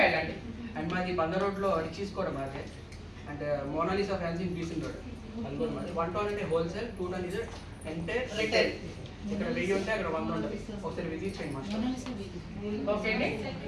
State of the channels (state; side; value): identical; both; correlation 1.00